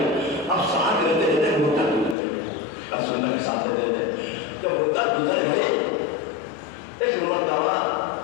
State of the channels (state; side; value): drops out; right; at 2.1 s